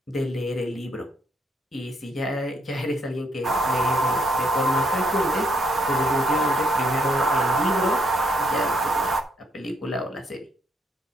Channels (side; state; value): both; normal; correlation 0.73